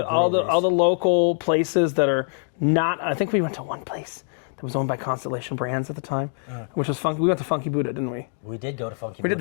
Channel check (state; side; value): silent; right; 63 dB below the other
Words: breweries. all the local places that are not. I think we went to one place that was owned by Constellation Brands at the time, which was funky. We went to Funky Buddha, didn't we? We did go to Funky We Buddha.